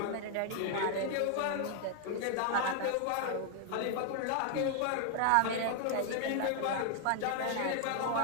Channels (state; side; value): different; both; correlation 0.00